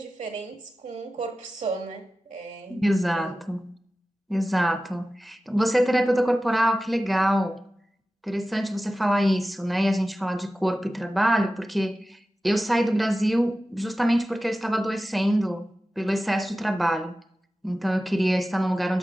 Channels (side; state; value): both; normal; correlation 0.95